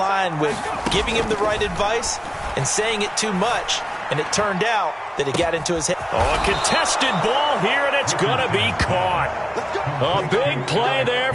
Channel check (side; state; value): both; identical; correlation 1.00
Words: with giving him the right advice and saying it too much, and it turned out that it got into his head. Oh, a contested ball here, and it's going to be caught. A big play there